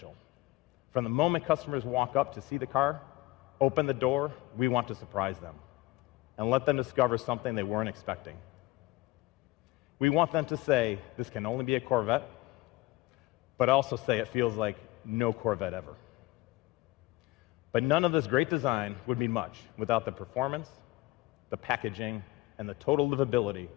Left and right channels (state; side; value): quieter; right; 19.6 dB